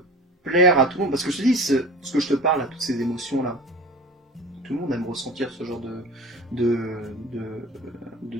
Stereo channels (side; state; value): both; normal; correlation 0.37